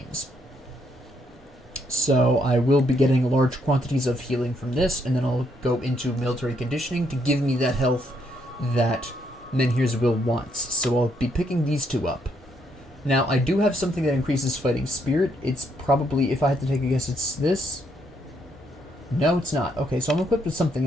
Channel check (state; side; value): normal; both; correlation 0.74